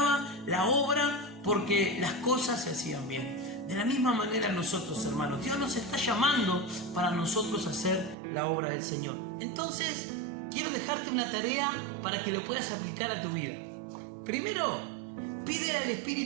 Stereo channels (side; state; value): left; drops out; at 8.2 s